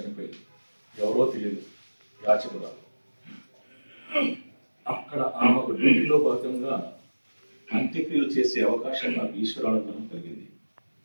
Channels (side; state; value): both; inverted; correlation -1.00